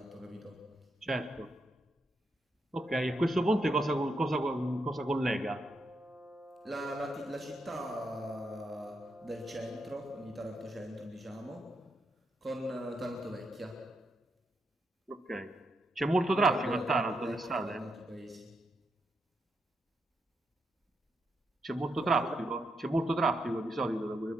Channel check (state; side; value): normal; both; correlation 0.82